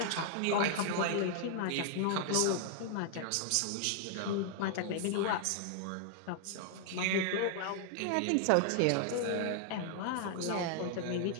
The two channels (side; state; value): both; different; correlation 0.00